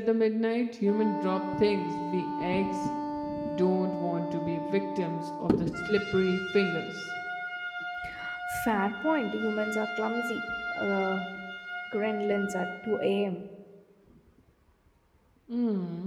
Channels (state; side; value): identical; both; correlation 1.00